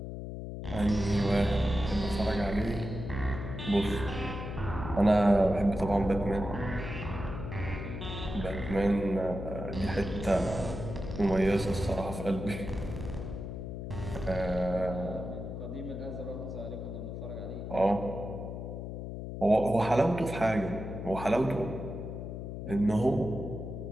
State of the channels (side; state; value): left; noise; hum, 7 dB below the sound